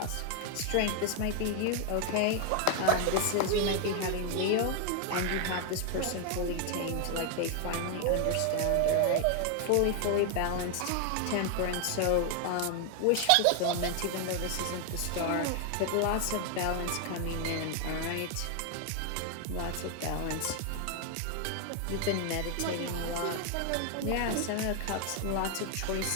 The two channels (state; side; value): different; both; correlation 0.00